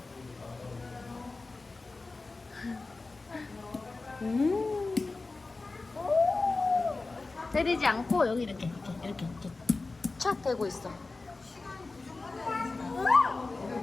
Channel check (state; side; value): quieter; right; 3.6 dB